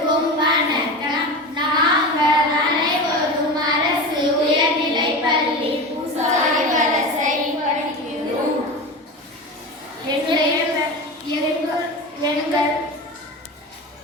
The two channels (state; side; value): normal; both; correlation 0.27